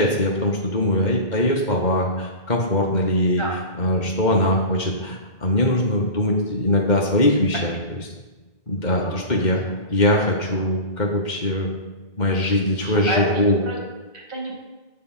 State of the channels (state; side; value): late; right; 2.1 ms